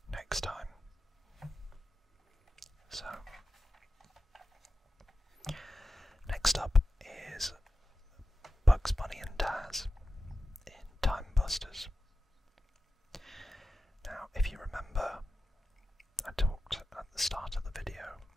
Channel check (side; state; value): both; normal; correlation 0.93